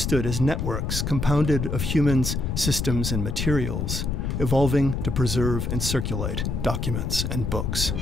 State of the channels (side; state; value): left; noise; rumble, 1 dB below the sound